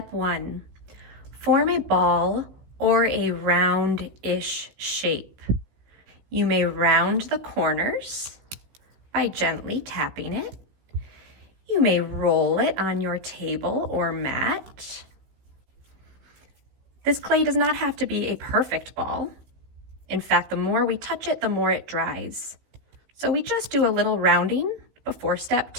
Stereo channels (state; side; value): late; left; 15 ms